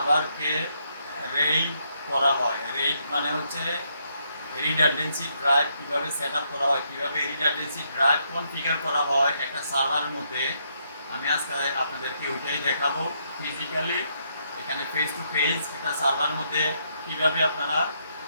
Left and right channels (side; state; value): both; inverted; correlation -0.75